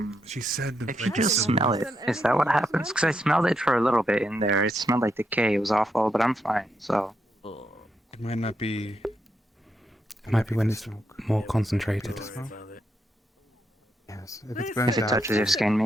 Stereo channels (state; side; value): normal; both; correlation 0.81